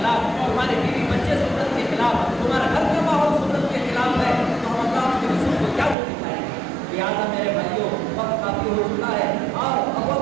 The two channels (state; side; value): drops out; left; at 6.0 s